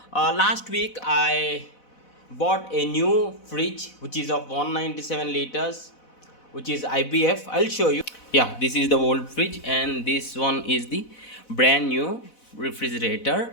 last week I bought a new fridge which is of 197 liters, which is IBF. I'll show you. Yeah, this is the old fridge and this one is the brand new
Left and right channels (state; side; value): late; right; 4.0 ms